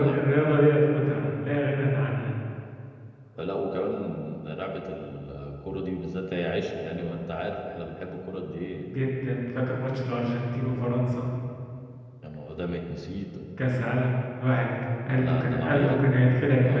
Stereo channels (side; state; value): both; identical; correlation 1.00